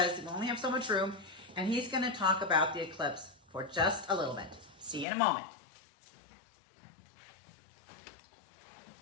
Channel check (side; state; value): right; drops out; at 5.1 s